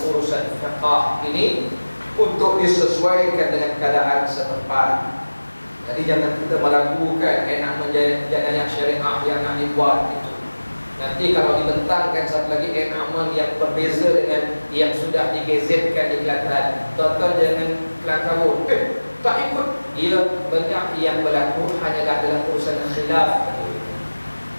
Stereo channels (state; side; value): inverted; both; correlation -1.00